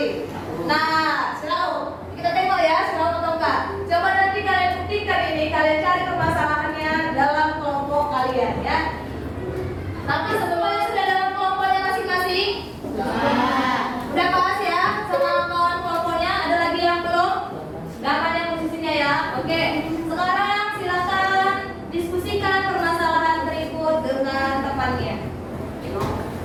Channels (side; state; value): both; identical; correlation 1.00